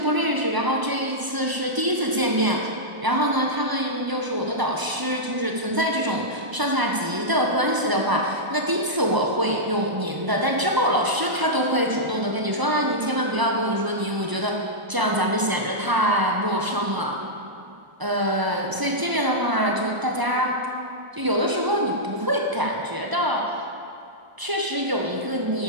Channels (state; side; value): late; left; 1.0 ms